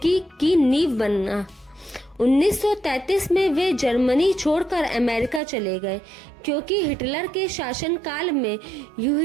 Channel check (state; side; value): drops out; left; at 5.4 s